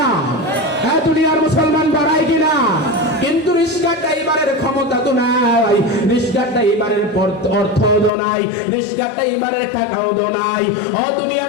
হ্যাঁ দুনিয়ার মুসলমান পড়ায় কিনা? কিন্তু রিক্সা ড্রাইভারের ক্ষমতা তো নাই, রিক্সা ড্রাইভারের অর্থ তো নাই, রিক্সা ড্রাইভারের টাকাও তো নাই। ও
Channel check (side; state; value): right; drops out; at 8.1 s